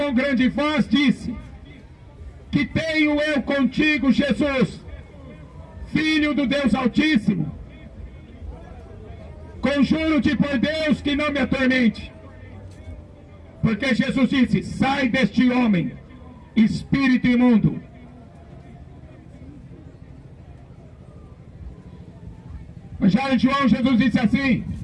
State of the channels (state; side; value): identical; both; correlation 1.00